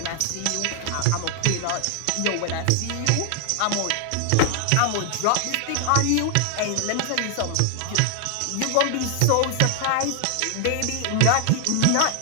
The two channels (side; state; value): both; different; correlation 0.00